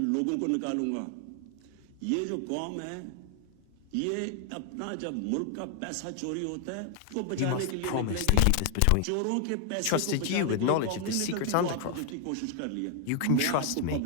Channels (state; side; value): different; both; correlation 0.00